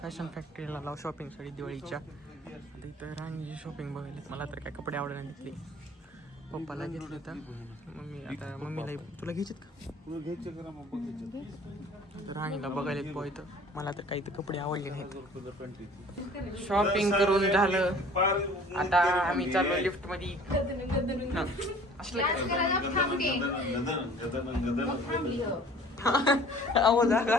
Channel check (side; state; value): both; normal; correlation 0.49